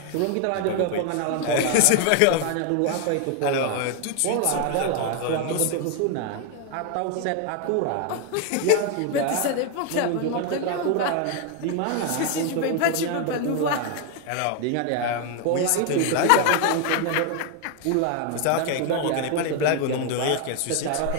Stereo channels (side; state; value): both; different; correlation 0.01